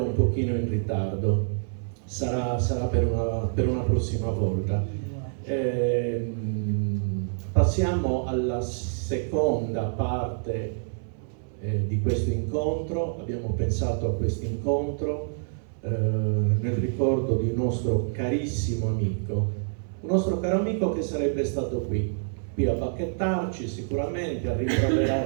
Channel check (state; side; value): silent; left; 59 dB below the other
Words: un pochino in ritardo. Sarà per una prossima volta. Passiamo alla seconda parte di questo incontro. Abbiamo pensato a questo incontro nel ricordo di un nostro carissimo amico, un nostro caro amico che sarebbe stato qui a bacchettarci sicuramente, a